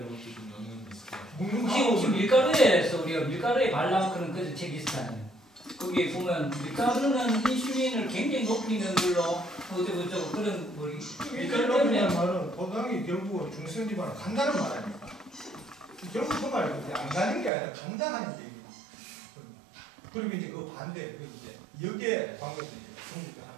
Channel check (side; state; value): left; drops out; at 17.5 s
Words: 것도 좀 영향이 있을 것 같아요. 혹시 밀가루에서 우리가 밀가루에 발라 그런 그 책이 있었잖아요. 거기에 보면 밀가루는 인슐린을 굉장히 높이는 걸로 어쩌고저쩌고 그런 뭐 밀가루 때문에 말은 포도당이 결국은 중성지방을 간다는 말 아닙니까? 결국 그 말은 안 가는 게 아니라 간다는 얘기입니다. 그리고 이제 그 반대, 그 이제 역의 방법을 이제